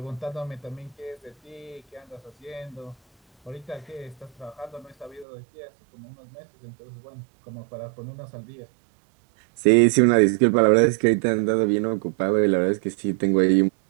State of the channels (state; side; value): drops out; left; at 5.2 s